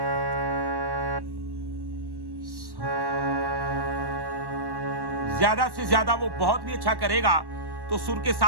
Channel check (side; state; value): left; late; 1.1 ms